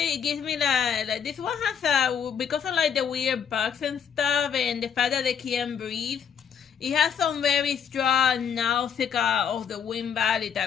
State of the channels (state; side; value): quieter; right; 7.6 dB